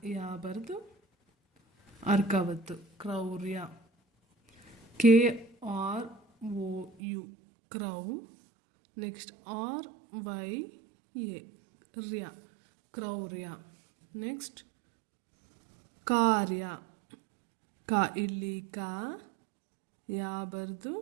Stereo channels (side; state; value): left; drops out; at 7.0 s